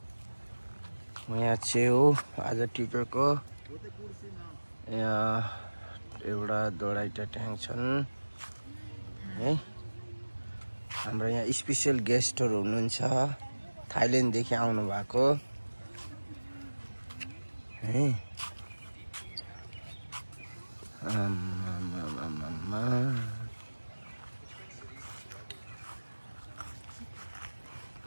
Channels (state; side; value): inverted; both; correlation -1.00